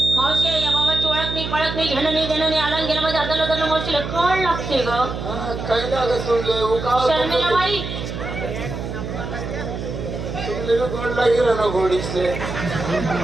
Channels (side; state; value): right; noise; hum, 6 dB below the sound